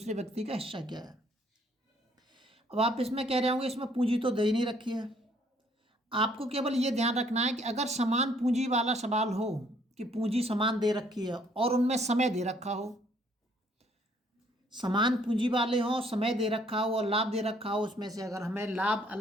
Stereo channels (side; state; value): both; normal; correlation 0.64